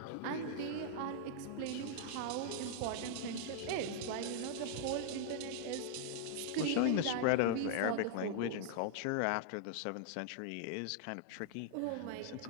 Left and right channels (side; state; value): both; different; correlation -0.01